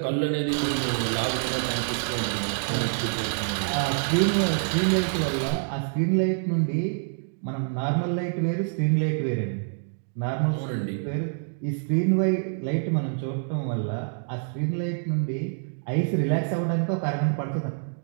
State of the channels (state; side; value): silent; left; digital silence